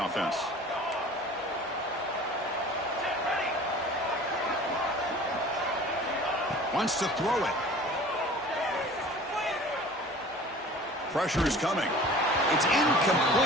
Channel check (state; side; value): normal; both; correlation 0.44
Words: offense. Wants to throw it. Pressure is coming. It's